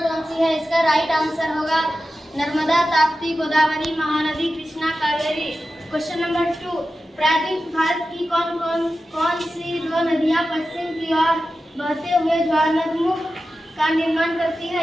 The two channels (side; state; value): both; normal; correlation 0.93